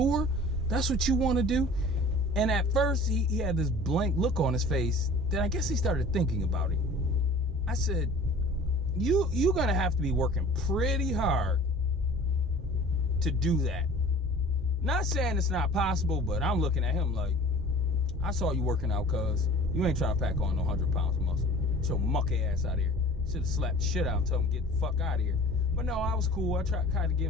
that's what you want to do? And at first, he had this blank look on his face. Then I guess he started thinking about it. I said, you're going to have to be working pretty hard to do that. Not saying it's not possible, but I'm looking at him like, I saw you working out, cuz. You ain't trying to pack on no 100 pounds of muscle. Get your mucky ass out of here. Should have slapped the shit out and told him get the fuck out of here. But no, I was cool. I tried kind of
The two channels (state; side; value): normal; both; correlation 0.44